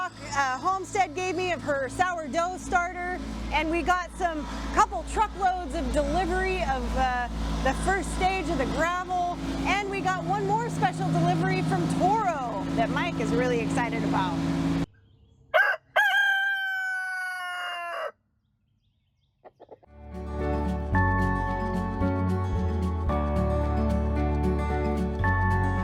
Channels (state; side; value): identical; both; correlation 1.00